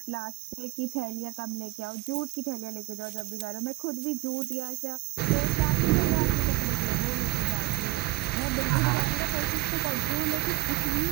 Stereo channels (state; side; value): quieter; left; 21.5 dB